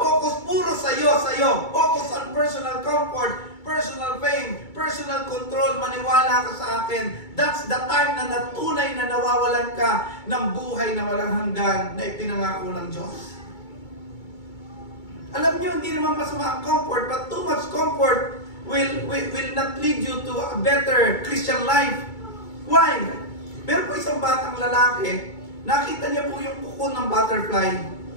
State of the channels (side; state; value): right; late; 2.3 ms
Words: puro sa'yo, focus on personal comfort, personal fame, personal control, maniwala ka sa akin, that's the time na natunay na nawawalan ka ng buhay na walang hanggan na ipinangako ng Diyos. Alam niyo, hindi naman masama ang comfort, but too much comfort will not lead you to a better Christian life. Why? Meron po isang batang lalaki, nakita niya po yung kuko ng butterfly.